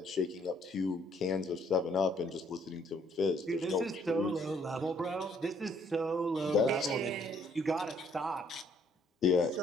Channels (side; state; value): both; normal; correlation 0.65